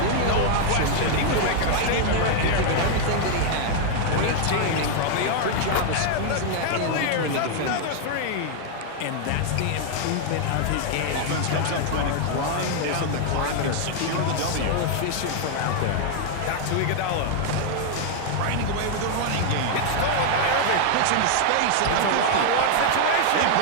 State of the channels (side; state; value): both; different; correlation 0.00